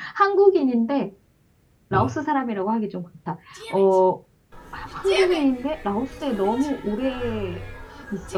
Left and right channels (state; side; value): identical; both; correlation 1.00